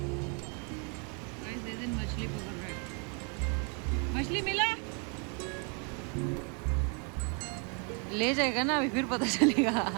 मछली पकड़ रहे हैं। मछली मिला? ले जाएगा ना अभी, फिर पता चलेगा।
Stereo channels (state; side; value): quieter; left; 37.0 dB